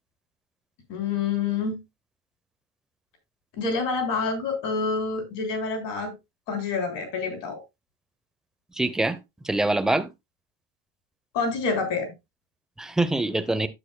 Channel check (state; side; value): normal; both; correlation 0.43